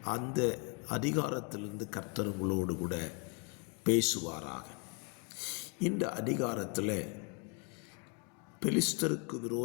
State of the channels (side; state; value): right; quieter; 35.5 dB